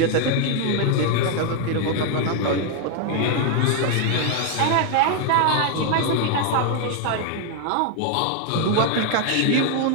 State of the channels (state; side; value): different; both; correlation 0.00